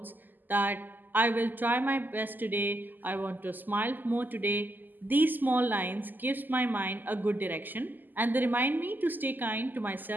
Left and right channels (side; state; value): left; late; 0.088 ms